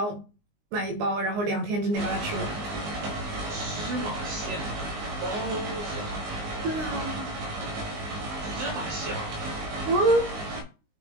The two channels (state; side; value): late; left; 19 ms